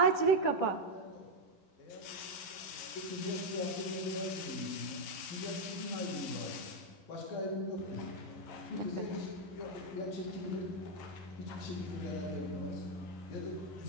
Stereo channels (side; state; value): right; late; 11 ms